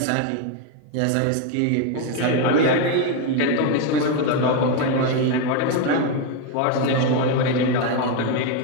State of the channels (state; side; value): different; both; correlation 0.01